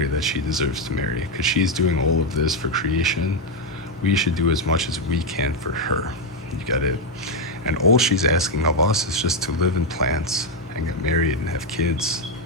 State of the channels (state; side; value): normal; both; correlation 0.04